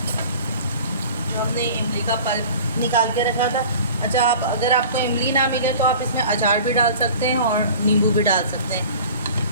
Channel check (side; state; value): both; inverted; correlation -0.43